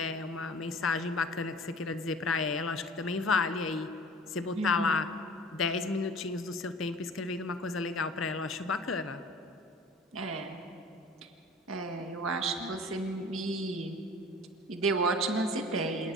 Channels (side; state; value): both; normal; correlation 0.44